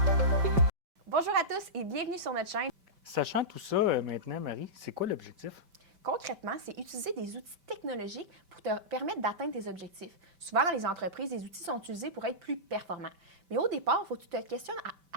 Bonjour à tous et bienvenue sur notre chaîne. Sachant tout ça maintenant, Marie, c'est quoi l'objectif? Concrètement, c'est utiliser des outils technologiques pour te permettre d'atteindre tes objectifs. Souvent, dans les entreprises, les outils sont utilisés pour être plus performants. Mais au départ, il faut que tu te questionnes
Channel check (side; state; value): left; late; 5.2 ms